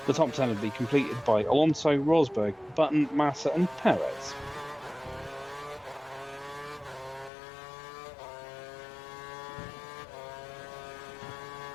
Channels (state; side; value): drops out; right; at 7.3 s